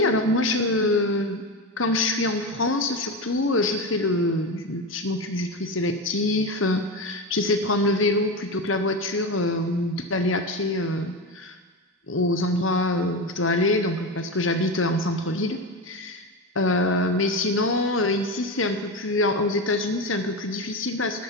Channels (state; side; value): normal; both; correlation 0.19